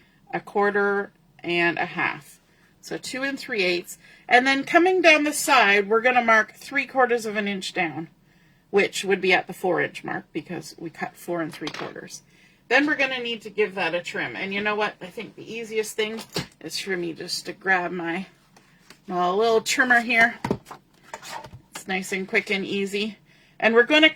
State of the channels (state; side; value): identical; both; correlation 1.00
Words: 1/4 and 1/2. So 2 3/8, and then coming down the side, we're going to mark 3/4 of an inch down, which would be at the 4-inch mark because we cut 4 3/4. Then we're going to need to give that a trim, and you know what? I think the easiest thing is for me just to grab my little trimmer here. It's nice and quick and easy. And we're going to